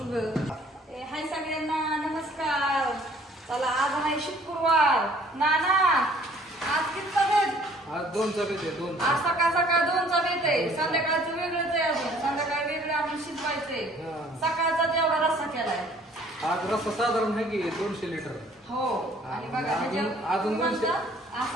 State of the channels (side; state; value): both; normal; correlation 0.57